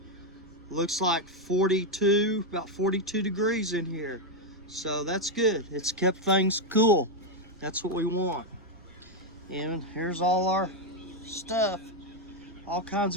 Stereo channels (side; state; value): right; noise; rumble, 26 dB below the sound